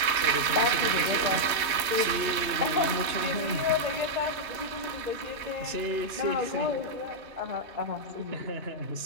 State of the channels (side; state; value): left; late; 3.1 ms